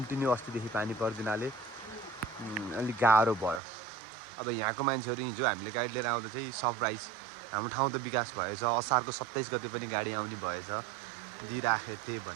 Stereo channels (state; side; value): drops out; left; at 3.6 s